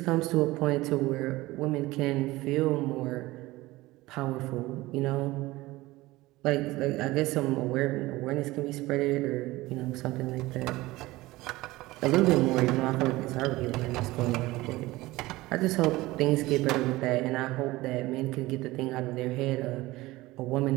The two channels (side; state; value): left; quieter; 19.2 dB